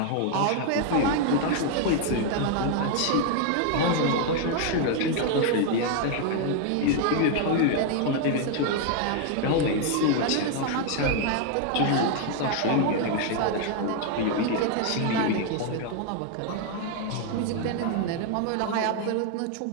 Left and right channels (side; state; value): both; different; correlation 0.00